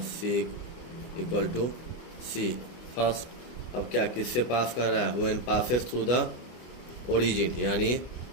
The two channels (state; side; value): late; right; 24 ms